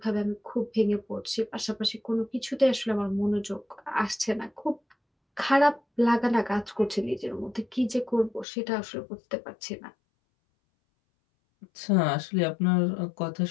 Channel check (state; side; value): drops out; right; at 8.5 s